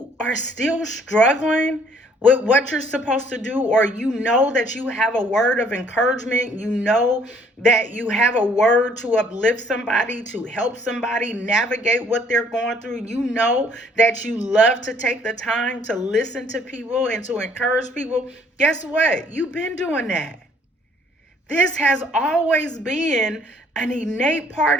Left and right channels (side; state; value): both; normal; correlation 0.61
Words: are still struggling with what you're supposed to do, or you know that you have a word of encouragement, you know that you have a word to uplift somebody, to help somebody navigate what they're going through, you know that you love to take the time to listen to people and to encourage people. Guess what? You've been doing that. This has always been an innate part